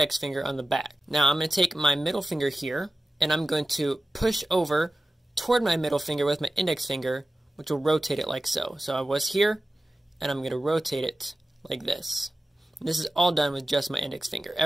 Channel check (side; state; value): both; normal; correlation 0.95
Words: finger on the back. Now I'm going to take my middle finger here, and I'm going to push over toward my middle finger with my index finger, which will rotate it like so. So I was here, and I'm going to rotate it like this. And this is all done with just my index finger.